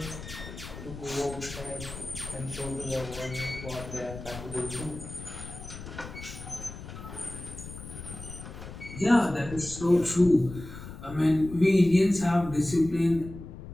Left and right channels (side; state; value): left; noise; rumble, 12 dB below the sound